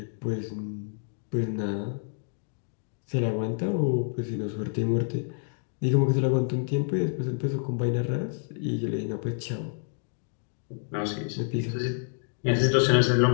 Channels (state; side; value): silent; right; digital silence